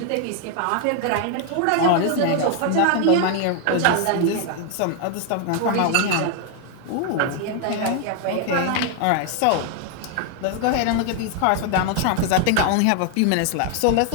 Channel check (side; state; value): both; different; correlation 0.00